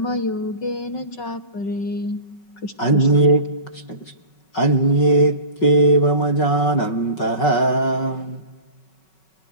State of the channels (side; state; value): right; late; 5.4 ms